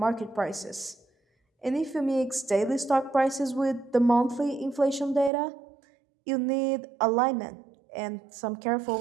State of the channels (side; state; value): left; drops out; at 5.3 s